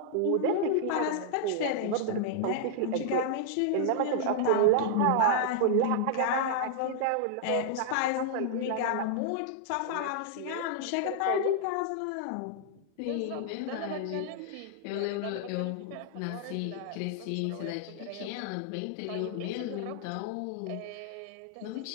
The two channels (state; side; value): different; both; correlation -0.01